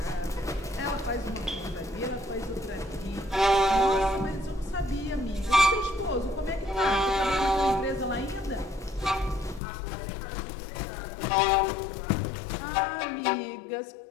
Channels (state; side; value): drops out; right; at 9.6 s